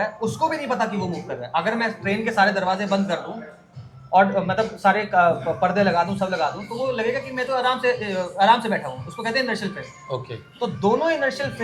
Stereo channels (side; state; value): both; identical; correlation 1.00